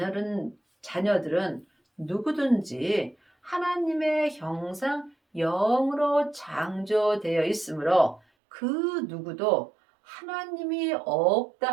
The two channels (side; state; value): left; drops out; at 8.2 s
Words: 누구든지 하나님의 형상 영으로 창조되어 있으므로 그 누구도 하나님이